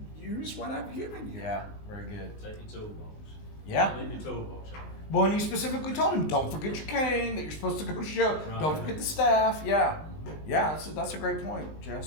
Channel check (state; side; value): late; right; 19 ms